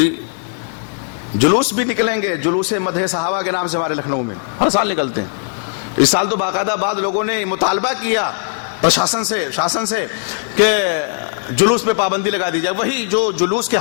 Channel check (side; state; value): right; silent; digital silence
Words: جلوس بھی نکلیں گے, جلوس مدح صحابہ کے نام سے ہمارے لکھنؤ میں ہر سال نکلتے ہیں. اس سال تو باقاعدہ بعض لوگوں نے مطالبہ کیا شاسن سے کہ جلوس پہ پابندی لگا دی جائے. وہی جو جلوس کے